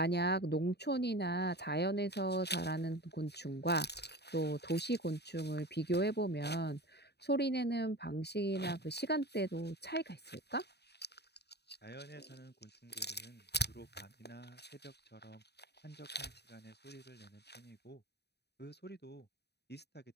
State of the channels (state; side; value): late; right; 0.48 ms